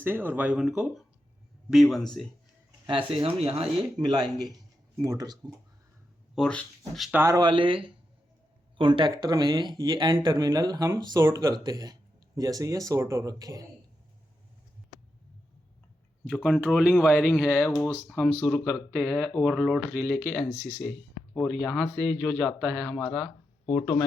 और Y1 को B1 से। ऐसे हम यहाँ ये मिलाएंगे मोटर्स को। और स्टार वाले कॉन्टैक्टर में ये N टर्मिनल हम शॉर्ट करते हैं, जैसे ये शॉर्ट हो रखे हैं। जो कंट्रोलिंग वायरिंग है वो हम शुरू करते हैं ओवरलोड रिले के एनसी से, और यहाँ से जो जाता है हमारा ऑटो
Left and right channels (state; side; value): normal; both; correlation 0.87